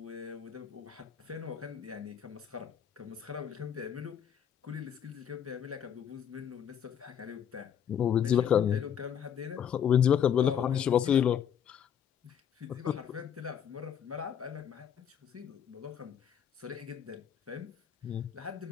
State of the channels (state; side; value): quieter; right; 8.7 dB